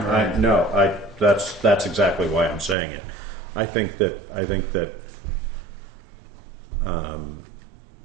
And that's exactly why I'm saying it. I think that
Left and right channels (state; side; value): drops out; left; at 2.8 s